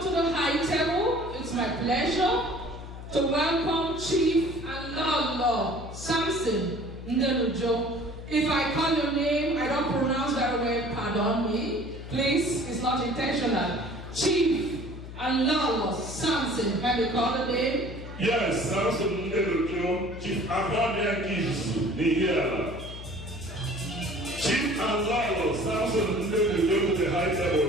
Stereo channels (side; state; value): left; noise; hum, 11 dB below the sound